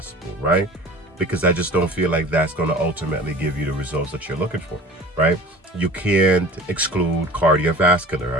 right? Because I just don't feel like that's going to ultimately give you the results that you're looking for, right? You can't exclude cardiovascular.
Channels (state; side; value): normal; both; correlation 0.42